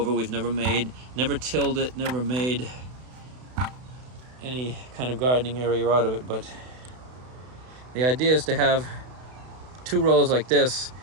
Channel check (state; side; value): late; left; 32 ms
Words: We've never tilled it, never made any kind of gardening area out of it. But the idea is to have 2 rows like this.